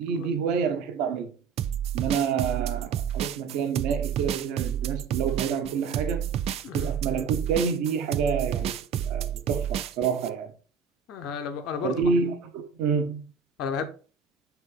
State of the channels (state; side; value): quieter; left; 6.1 dB